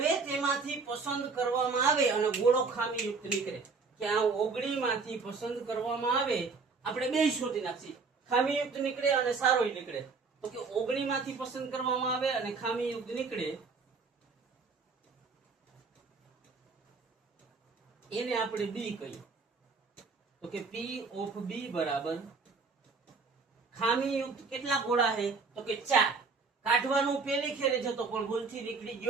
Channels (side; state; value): left; quieter; 4.6 dB